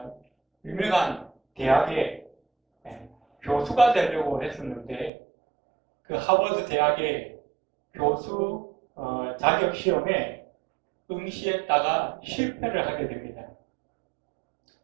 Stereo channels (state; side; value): drops out; left; at 5.1 s